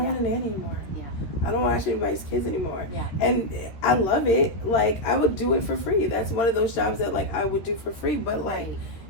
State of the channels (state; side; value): late; right; 13 ms